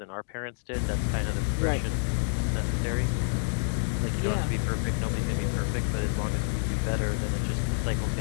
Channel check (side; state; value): right; silent; digital silence